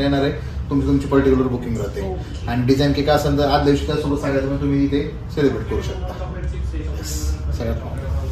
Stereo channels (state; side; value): identical; both; correlation 1.00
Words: येणार आहे, तुमची पर्टिक्युलर बुकिंग राहते. आणि डिझाईन केक असेल तर आज दिवशी त्यासोबत सांगायचं तुम्ही इथे सेलिब्रेट करू शकता. सगळ्यात